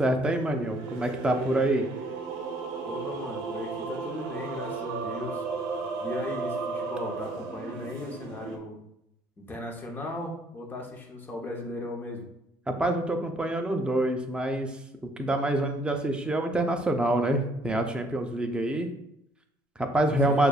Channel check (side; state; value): both; normal; correlation 0.64